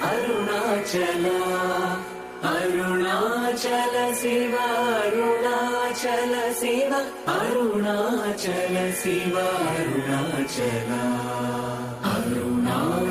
Arunachal Arunachal Shiva Arunachal Shiva Arunachal Shiva Arunachal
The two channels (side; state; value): both; identical; correlation 1.00